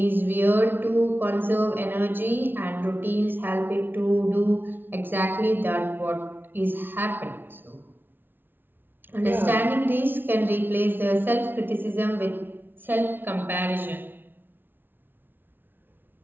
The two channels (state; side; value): late; left; 0.097 ms